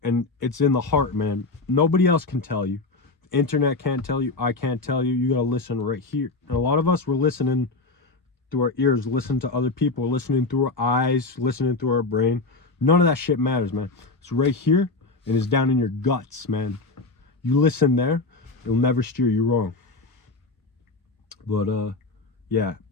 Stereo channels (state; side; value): quieter; right; 3.6 dB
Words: And it's in the heart, man. Nobody else can tell you. The internet can't tell you. I can't tell you. You got to listen right here. And a lot of us, we're listening through our ears, listening to other people, listening through our eyes, listening through our brain. None of that shit matters, man. It's right here and it's down in your guts, man. You listen there, it'll never steer you wrong. But, yeah.